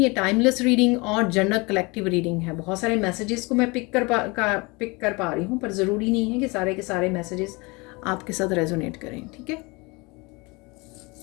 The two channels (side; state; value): right; quieter; 26.6 dB